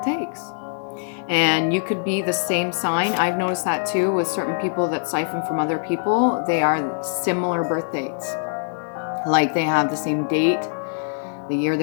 takes. And you could be the same sign. I've noticed that too with certain people that siphon from other people. They are similar birth dates. Like they have the same date, the year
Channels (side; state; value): right; silent; digital silence